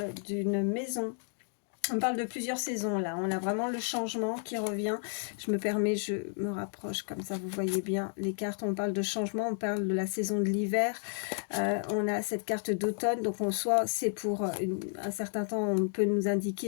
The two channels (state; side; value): silent; right; 56 dB below the other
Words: d'une maison. On parle de plusieurs saisons là, on a vraiment le changement qui revient. Je me permets, je me rapproche comme ça vous voyez bien les cartes. On parle de changement, on parle de la saison de l'hiver. On a cette carte d'automne, donc en soi c'est pour un certain temps, on peut nous